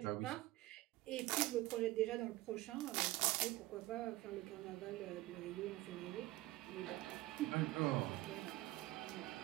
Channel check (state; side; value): quieter; left; 18.1 dB